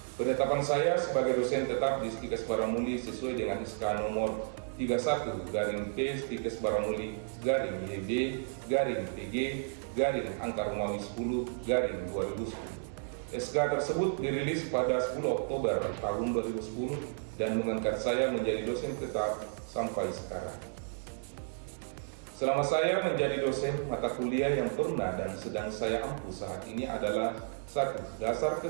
Penetapan saya sebagai dosen tetap di Stikes Baramuli sesuai dengan SK nomor 31/P/Baramuli/PG/Angka Romawi 10/2010. SK tersebut dirilis pada 10 Oktober tahun 2010 dan mengangkat saya menjadi dosen tetap sampai sekarang. Selama saya menjadi dosen, mata kuliah yang pernah dan sedang saya ampu saat ini adalah 1. Dasar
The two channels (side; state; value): left; silent; digital silence